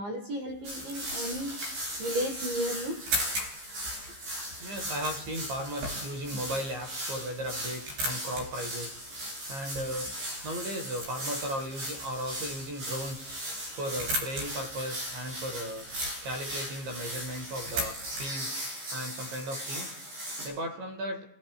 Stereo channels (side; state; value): left; late; 15 ms